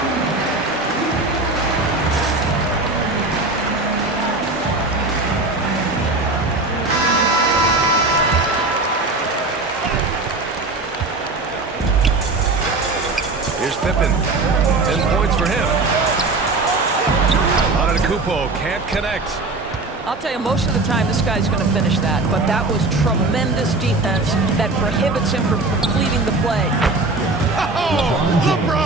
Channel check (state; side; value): quieter; left; 3.3 dB